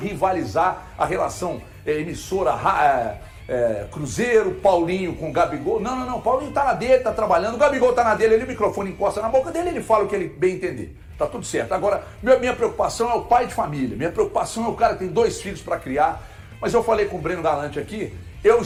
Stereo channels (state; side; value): identical; both; correlation 1.00